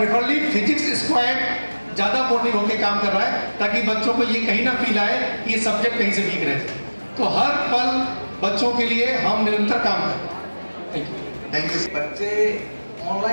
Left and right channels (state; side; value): inverted; both; correlation -1.00